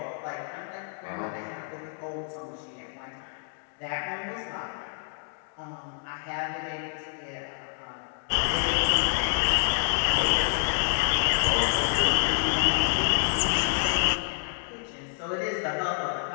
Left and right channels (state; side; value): silent; right; digital silence